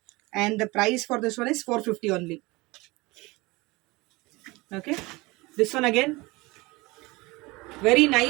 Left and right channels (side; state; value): left; quieter; 23.2 dB